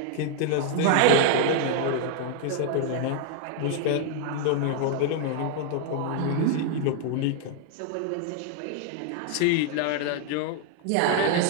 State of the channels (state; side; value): different; both; correlation 0.00